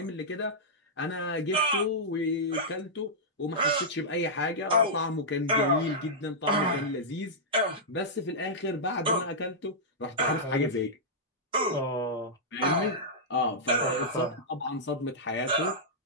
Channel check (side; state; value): both; normal; correlation -0.11